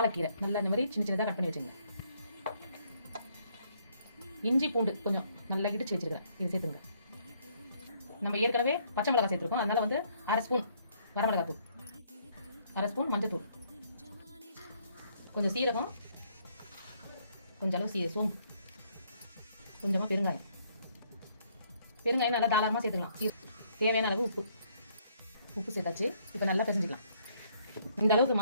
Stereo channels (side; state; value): both; inverted; correlation -0.67